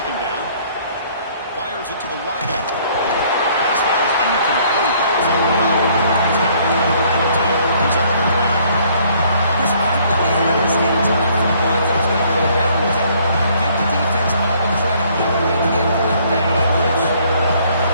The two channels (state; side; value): inverted; both; correlation -0.62